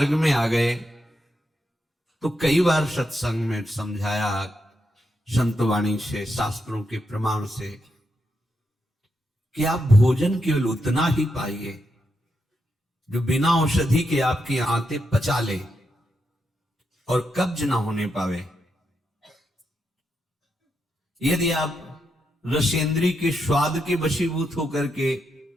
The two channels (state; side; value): normal; both; correlation 0.83